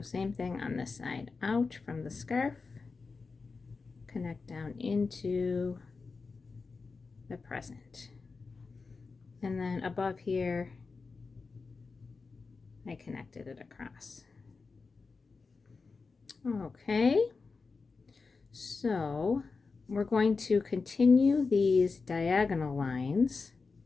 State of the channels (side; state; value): right; quieter; 4.4 dB